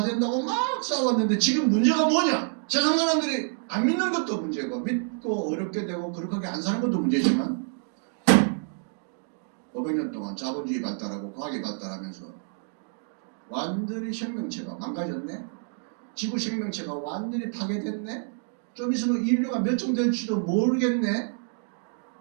막 싸웠는데 지금 문제가 뭐냐? 세상 사람들이 안 믿는 것도 문제고 믿고 어렵게 되고 거룩하게 안 사는 것도 문제지만 500년 동안 자본주의 발달하고 과학이 발달하면서 완전히 생명체가 망가졌네? 지구 생명체가 완전히 파괴됐네? 좀 있으면 인류가 멸종될지도 모르겠네?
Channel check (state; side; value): silent; left; 55 dB below the other